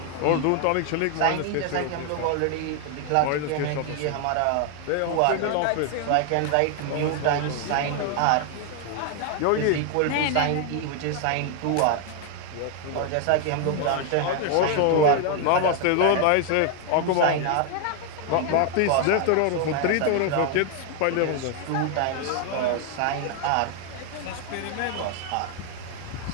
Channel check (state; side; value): different; both; correlation 0.00